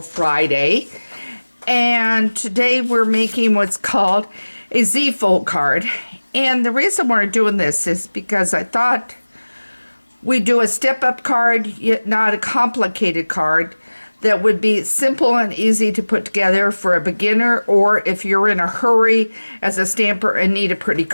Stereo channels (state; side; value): inverted; both; correlation -1.00